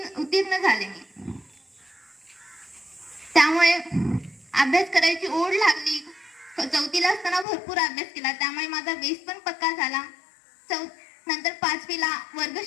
उत्तीर्ण झाले मी. त्यामुळे अभ्यास करायची ओढ लागली. 4थीला असताना भरपूर अभ्यास केला, त्यामुळे माझा बेस पण पक्का झाला. नंतर 5वीला वर्ग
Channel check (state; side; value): drops out; right; at 7.5 s